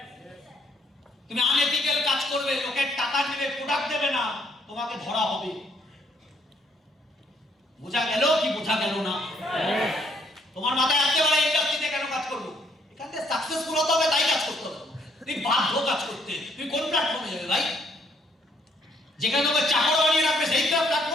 তুমি আনএথিক্যাল কাজ করবে, লোকের টাকা নেবে, প্রোডাক্ট দেবে না, তোমাকে ধরা হবে। বোঝা গেল কি বোঝা গেল না? তোমার মাথায় আসতে পারে ইন্ডাস্ট্রিতে কেন কাজ করবো, এখান থেকে সাকসেসফুল হতে হবে, তাই কাজ করতে হবে। তুমি বাধ্য কাজ করতে, তুমি কোন প্ল্যাটফর্মে যাবে ভাই? যেখানে তোমাকে চাকর বানিয়ে রাখবে সেই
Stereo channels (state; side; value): normal; both; correlation 0.68